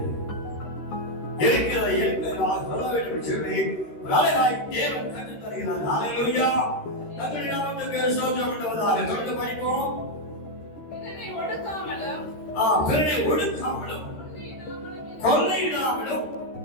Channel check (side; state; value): right; late; 13 ms